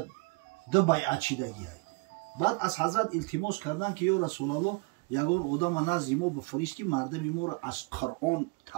2 بیعت شدگی. بعد از حضرت التماس کردن که یا رسول الله یگان آدم نزد ما بفرستی مردم ما را از قرآن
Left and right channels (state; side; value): quieter; left; 28.8 dB